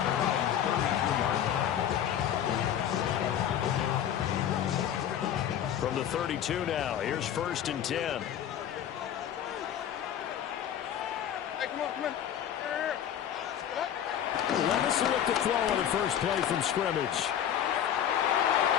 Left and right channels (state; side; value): quieter; right; 10.0 dB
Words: 32. From the 32 now, here's 1st and 10. Hey, come on. Levis will look to throw on the first play from scrimmage.